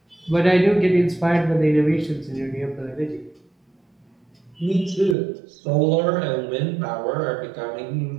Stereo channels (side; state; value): left; drops out; at 5.2 s